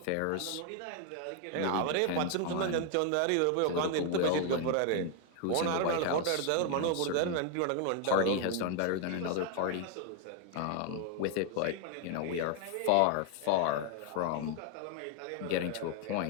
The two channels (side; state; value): both; different; correlation 0.01